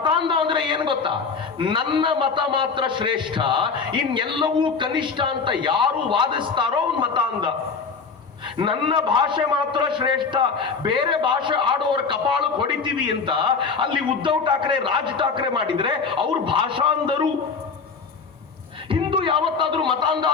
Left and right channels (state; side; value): quieter; right; 5.2 dB